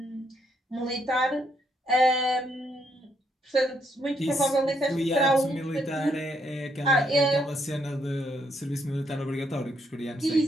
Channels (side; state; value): both; normal; correlation 0.74